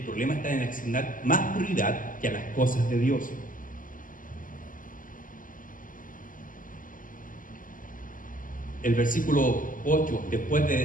está en asignar más prioridad que a las cosas de Dios. El versículo 8, después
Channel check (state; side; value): late; right; 0.39 ms